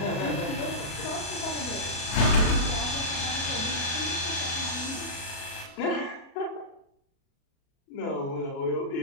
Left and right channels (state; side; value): late; right; 37 ms